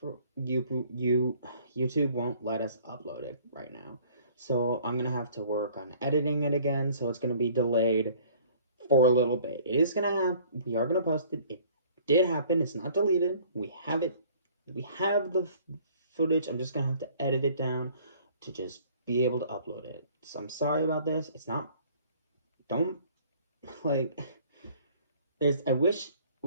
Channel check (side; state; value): both; inverted; correlation -0.54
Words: YouTube won't let us upload it right now. So I'm gonna have to work on editing it again. So it's gonna be delayed for a little bit. It is gonna happen. We are gonna post it. It did happen. It's not deleted. We have it. We have the footage. I'm just gonna have to edit it down to just be able to upload it. So I'm sorry about this. It's not. Don't like. There's. I wish